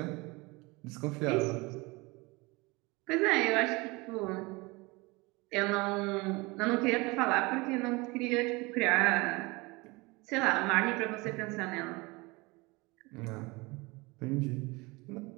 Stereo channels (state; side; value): quieter; left; 24.5 dB